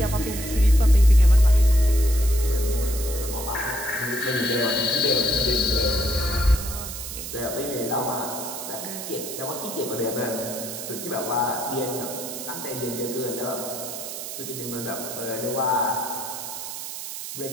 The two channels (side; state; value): right; noise; hiss, 8 dB below the sound